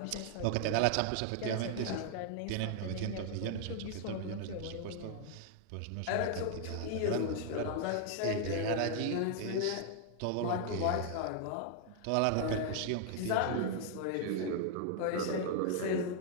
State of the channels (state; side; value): different; both; correlation 0.00